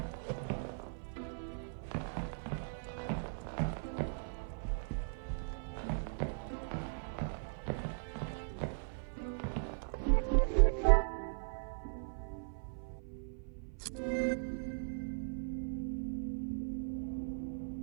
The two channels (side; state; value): left; silent; 52 dB below the other